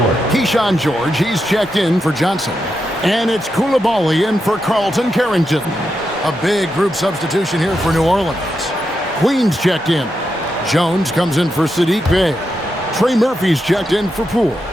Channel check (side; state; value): both; normal; correlation 0.85